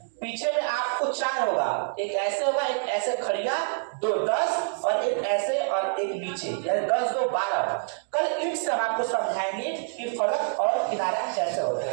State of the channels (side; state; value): left; silent; digital silence